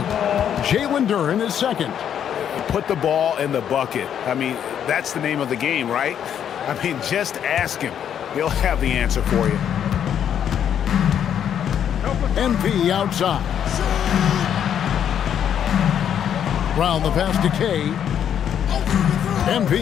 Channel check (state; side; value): quieter; right; 9.1 dB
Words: Jalen Duren is second. Put the ball in the bucket. I mean, that's the name of the game, right? I mean, just ask him. He'll have the answer for you. MP outside. Brown the pass to Kay.